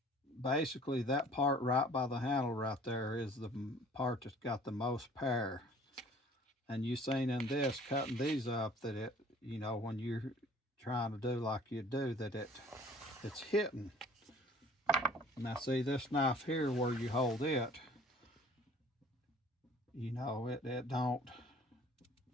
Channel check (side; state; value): both; normal; correlation 0.51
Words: basically that part right by the handle right there is the part that's got the most power. And you seen in this, cutting these up, that it, when you're trying to do like you do, that it's hitting. Now see this knife here where you hold it, it don't,